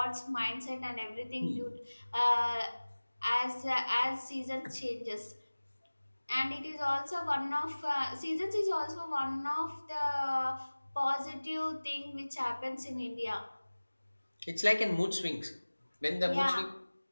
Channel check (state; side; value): inverted; both; correlation -1.00